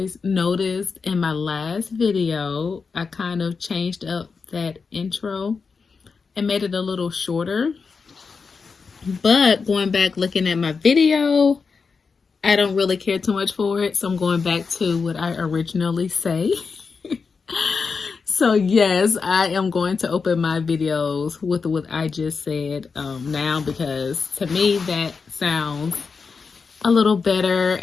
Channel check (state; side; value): quieter; right; 5.1 dB